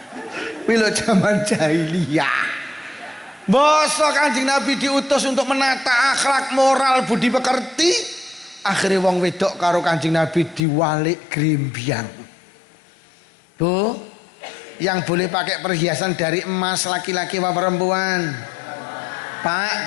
Bila zaman jahiliyah. Basa Kanjeng Nabi diutus untuk menata akhlak moral budi pekerti. Akhirnya wong wedok karo Kanjeng Nabi diwalik grimbyang. Bu, yang boleh pakai perhiasan dari emas laki-laki apa perempuan?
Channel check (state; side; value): drops out; right; at 10.7 s